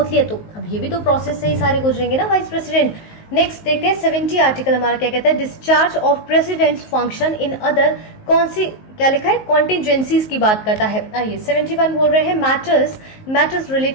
लिया, तो अब ये भी तो प्रोसेस से ही सारे गुजरेंगे ना वाइस प्रेसिडेंट। नेक्स्ट देखते हैं 70 आर्टिकल हमारा क्या कहता है, discharge of presidents function in other कौन सी क्या लिखा है, कॉन्टिजेंसीज की बात करता है। आइए 71 बोल रहे हैं matters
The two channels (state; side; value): late; right; 19 ms